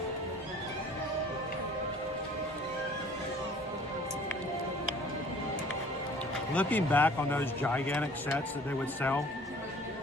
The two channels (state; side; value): normal; both; correlation 0.51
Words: Looking back on those gigantic sets that they would sell,